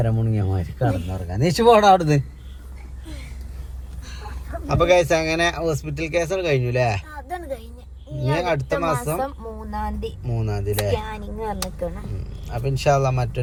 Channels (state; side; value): identical; both; correlation 1.00